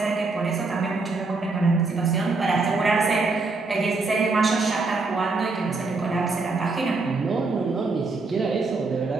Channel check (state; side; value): quieter; left; 3.8 dB